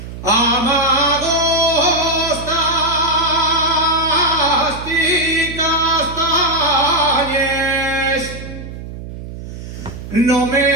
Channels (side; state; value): right; noise; hum, 11 dB below the sound